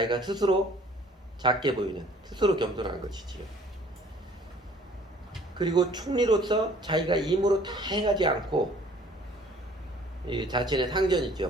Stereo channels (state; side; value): normal; both; correlation 0.54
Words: 스스로 작게 보이는, 스스로 겸손한 것이지요. 그리고 총리로서 자기가 임으로 다 행하지 않고 이 자신의